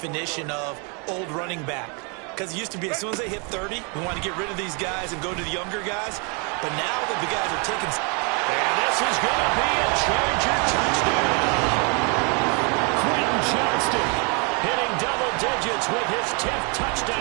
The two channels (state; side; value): quieter; left; 34.8 dB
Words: of old running back. Because it used to be as soon as they hit 30, we want to get rid of these guys and go to the younger guys. But now that the guys are taking... And this is going to be a Charger touchdown. Quentin Johnston hitting double digits with his 10th